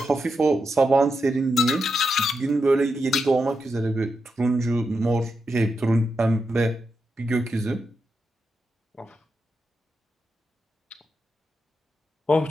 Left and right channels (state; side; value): normal; both; correlation 0.86